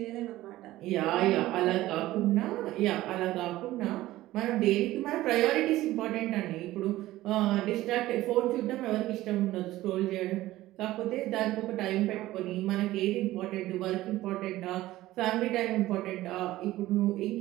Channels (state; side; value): quieter; left; 16.2 dB